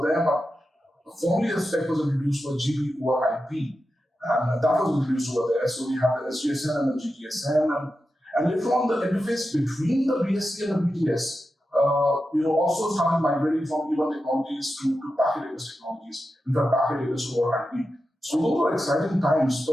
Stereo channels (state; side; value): normal; both; correlation 0.90